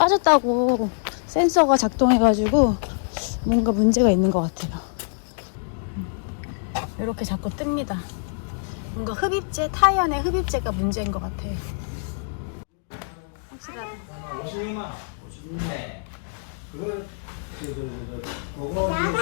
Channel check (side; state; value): right; silent; digital silence